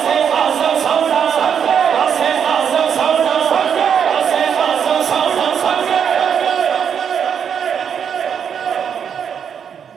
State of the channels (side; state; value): left; quieter; 7.7 dB